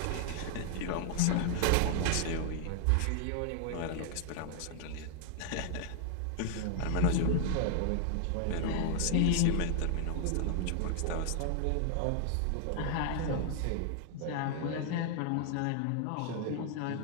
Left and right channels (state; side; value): different; both; correlation 0.00